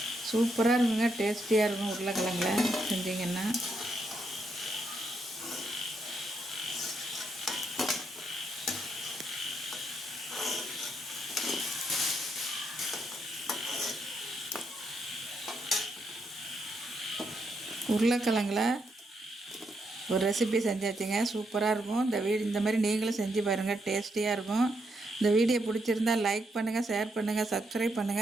சூப்பராக இருக்குங்க, டேஸ்டியாக இருக்கும். உருளைக்கிழங்குல செஞ்சிங்கன்னா உருளைக்கிழங்குல ஒரு ரெசிபி செஞ்சாச்சுங்க. சூப்பராக இருக்கும். இந்த மாதிரி நீங்களும் செஞ்சு பாருங்கள், டேஸ்டியாக இருக்கும். இந்த வீடியோ பிடிச்சிருந்தால் லைக் பண்ணுங்கள், ஷேர் பண்ணுங்கள், சப்ஸ்கிரைப்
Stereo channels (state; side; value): normal; both; correlation 0.79